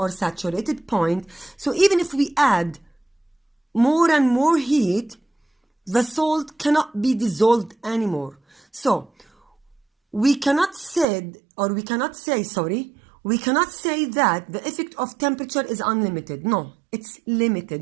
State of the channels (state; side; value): drops out; left; at 11.1 s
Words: saturated point. So even if we add more and more heat, the salt cannot be dissolved anymore. So we cannot say that the effect of temperature is unlimited. No, it's